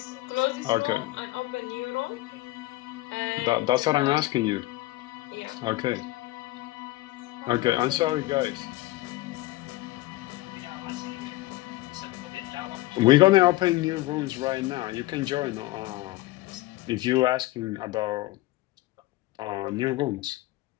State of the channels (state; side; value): quieter; right; 18.2 dB